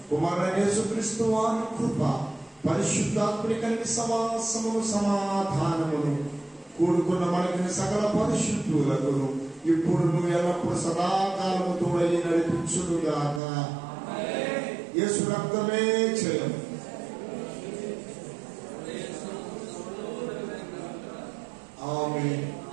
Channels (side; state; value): left; drops out; at 13.4 s